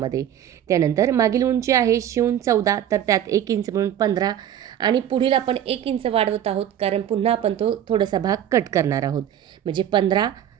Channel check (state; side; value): quieter; left; 10.6 dB